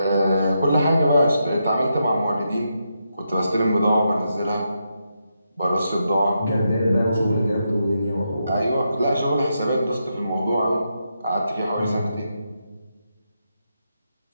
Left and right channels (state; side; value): inverted; both; correlation -0.83